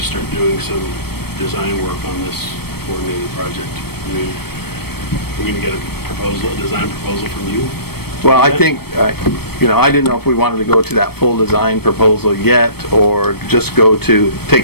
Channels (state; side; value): late; right; 0.96 ms